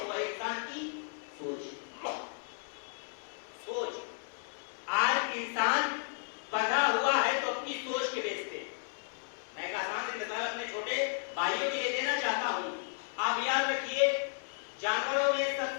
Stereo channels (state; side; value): silent; right; digital silence